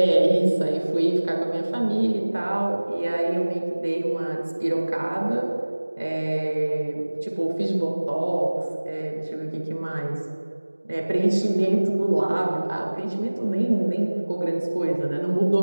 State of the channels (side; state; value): both; inverted; correlation -1.00